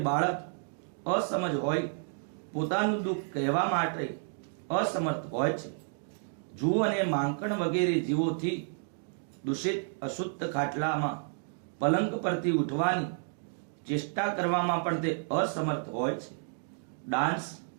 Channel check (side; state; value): left; silent; digital silence